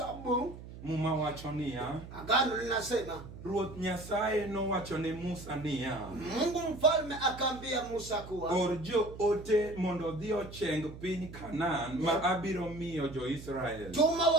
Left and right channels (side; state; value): right; noise; hum, 14 dB below the sound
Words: Muma wacho niya. Agano linasema Ruoth Nyasaye no wacho ne Musa niya. Mungu mfalme akaambia Musa kuwa Orjo ote mondo dhi ocheng piny Kanaan ma abiro miyo jo Israel. Tuma